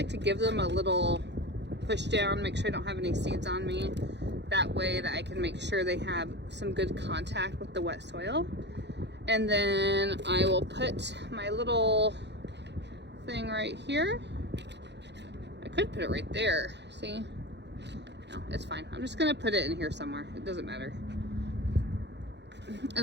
to give them a little push down, make sure I don't have any seeds on me. That way that I can make sure they have some good contact with the wet soil. And then I will put my little thing right here. I could put it right there, see? No, it's fine. I'm just gonna put it in here somewhere. It doesn't matter.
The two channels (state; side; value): late; left; 0.50 ms